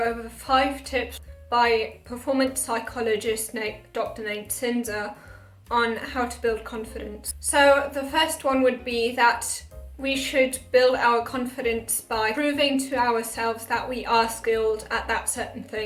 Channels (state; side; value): identical; both; correlation 1.00